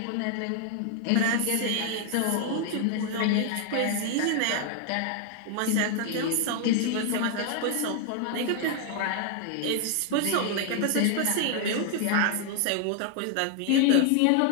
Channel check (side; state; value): both; different; correlation 0.00